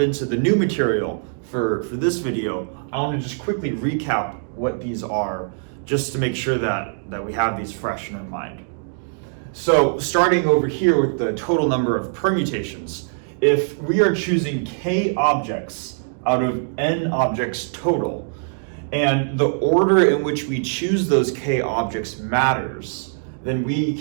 the new material for this video, I want to just quickly recap what these are, just to make sure that we have these fresh in our mind. So starting over here with the total number of permutations, if we are choosing k objects out of n objects total, and the order in which we choose those k objects matters, then we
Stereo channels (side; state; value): left; silent; digital silence